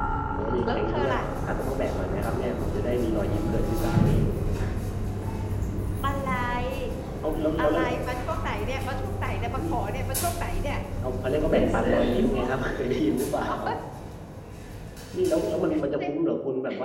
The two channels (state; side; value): identical; both; correlation 1.00